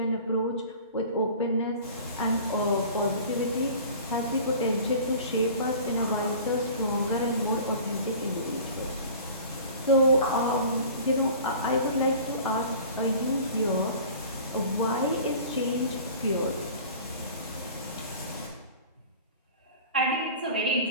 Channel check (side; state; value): both; inverted; correlation -0.42